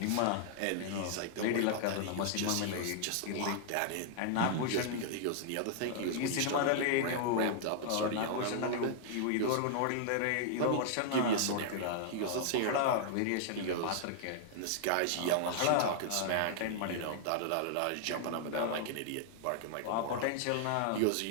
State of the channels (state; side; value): different; both; correlation -0.01